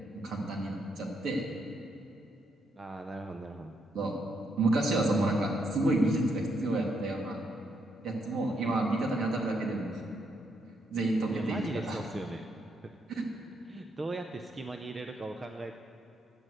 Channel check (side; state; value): both; normal; correlation 0.77